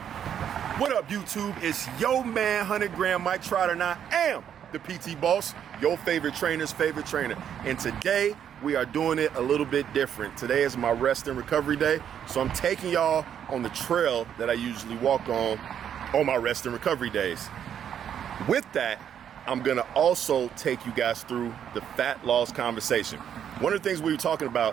What up, YouTube? It's your man, 100 Gram Mike Trotter, and I am the PT Boss, your favorite trainer's favorite trainer. And today, we are doing it a little bit different. Today is my rest and recovery day, so I'm taking y'all on the trail that I usually walk on my rest and recovery days. With that, I'm gonna also take you guys through the fat loss conversation. One of the things we were talking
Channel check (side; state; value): left; quieter; 9.1 dB